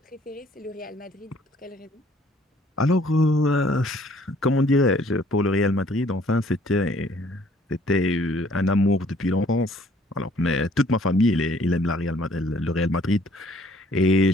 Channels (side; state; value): both; normal; correlation 0.60